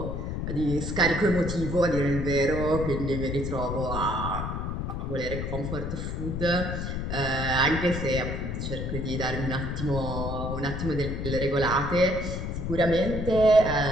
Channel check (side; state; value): left; noise; rumble, 3 dB below the sound